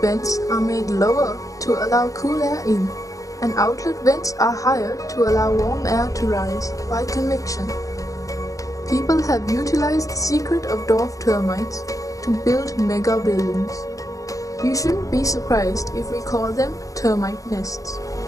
are made lower to allow cool air in, and outlet vents are higher to allow warm air to rise by convection. People have utilized the secret of dwarf termites to build mega buildings. You shouldn't be surprised if we call them termite nests.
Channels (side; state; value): right; late; 0.16 ms